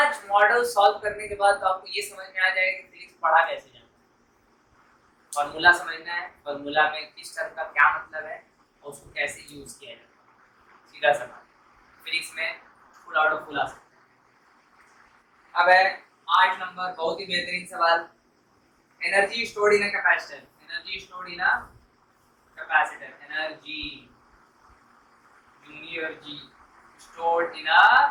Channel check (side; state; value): both; identical; correlation 1.00